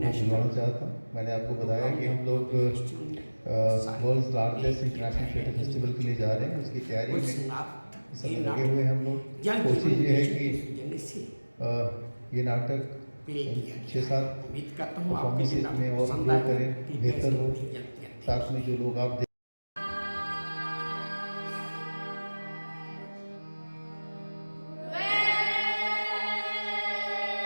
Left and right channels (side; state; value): both; inverted; correlation -1.00